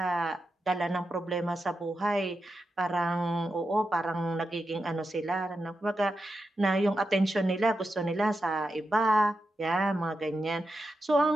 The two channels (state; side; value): normal; both; correlation 0.88